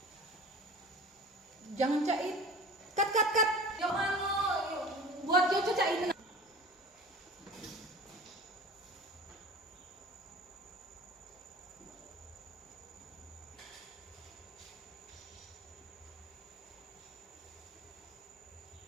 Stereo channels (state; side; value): normal; both; correlation 0.39